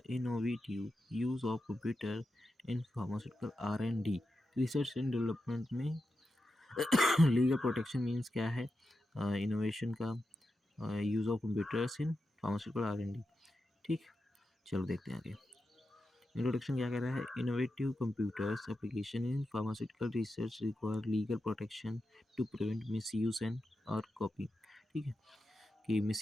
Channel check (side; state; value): both; normal; correlation 0.89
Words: innovative use of computer in pharmaceutical R&D, research and development में लीगल प्रोटेक्शन मीन्स क्या है, इनोवेशन का use of computers in pharmaceutical R&D। ठीक, चलो देखते हैं आगे। इंट्रोडक्शन क्या कह रहा है, innovative computers application in pharmaceutical research require legal protection to prevent misuse and और कॉपी। ठीक है, कि